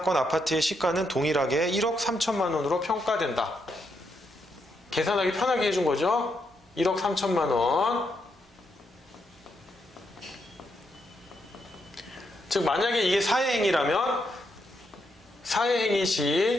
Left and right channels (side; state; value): both; normal; correlation 0.80